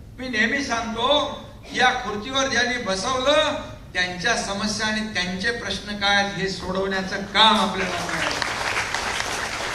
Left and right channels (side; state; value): both; identical; correlation 1.00